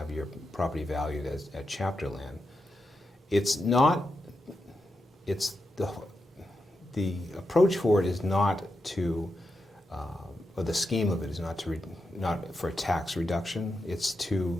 your property valued at chapter land. The approach for it is not to, or the scheme of it is not for tax reduction. It's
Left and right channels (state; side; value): normal; both; correlation 0.87